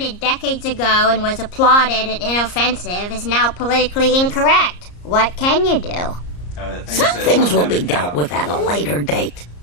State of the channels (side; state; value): right; late; 34 ms